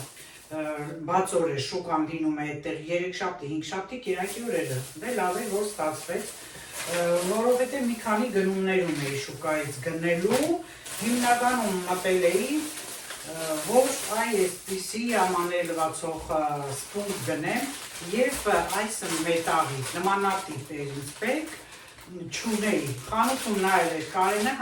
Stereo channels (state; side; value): identical; both; correlation 1.00